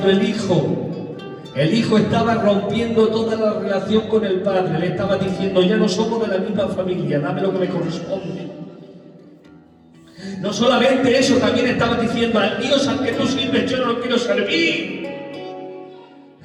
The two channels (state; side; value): identical; both; correlation 1.00